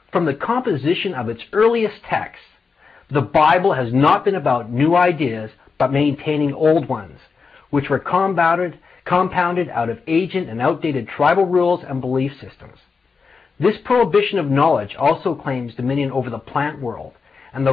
From the composition of its earliest texts, the Bible has not been about new ideas, but maintaining old ones, which were compounded out of ancient and outdated tribal rules and belief systems. This prohibition of knowledge also claims dominion over the plant world and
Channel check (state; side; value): quieter; right; 5.0 dB